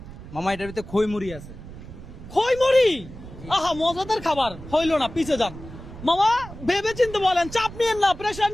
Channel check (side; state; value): right; noise; rumble, 14 dB below the sound